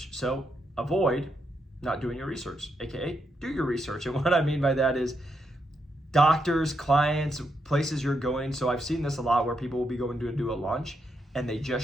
So avoid not doing your research, aka do your research. And what I mean by that is doctors, clients, places you're going. So I've seen this a lot where people will be going to do a lunch and they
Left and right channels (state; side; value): normal; both; correlation 0.81